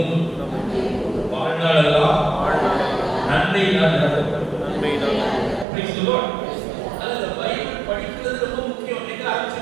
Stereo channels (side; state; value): left; drops out; at 5.7 s